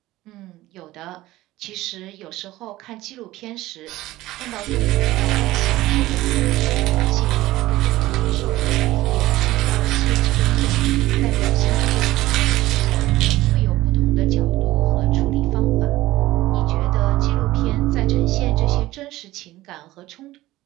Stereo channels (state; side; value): quieter; left; 17.1 dB